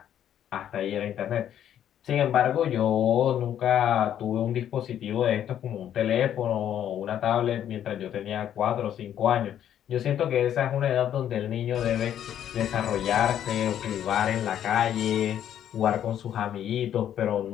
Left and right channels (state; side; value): quieter; right; 10.3 dB